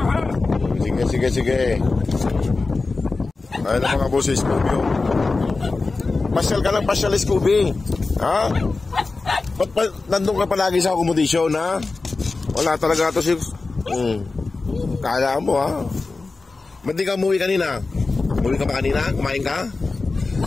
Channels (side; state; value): right; quieter; 3.8 dB